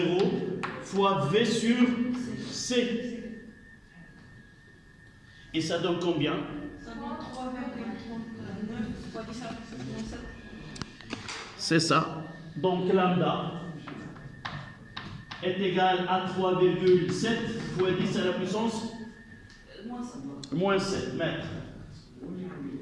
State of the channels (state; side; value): identical; both; correlation 1.00